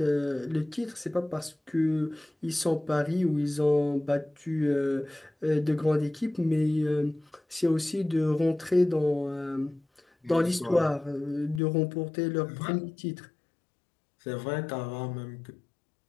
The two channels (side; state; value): right; drops out; at 11.6 s